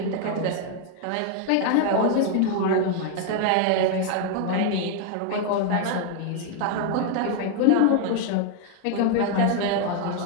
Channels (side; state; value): both; different; correlation 0.00